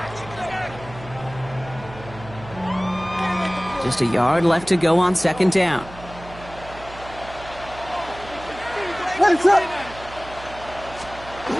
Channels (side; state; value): right; noise; hum, 16 dB below the sound